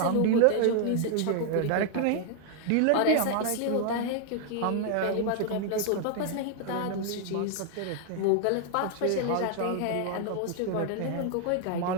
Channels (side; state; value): both; different; correlation 0.00